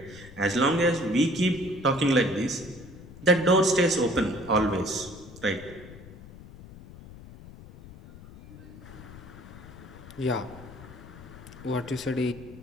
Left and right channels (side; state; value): left; noise; rumble, 17 dB below the sound